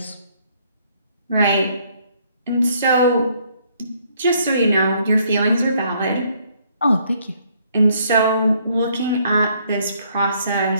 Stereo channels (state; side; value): inverted; both; correlation -0.67